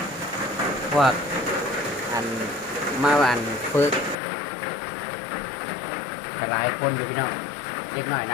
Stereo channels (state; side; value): drops out; right; at 4.2 s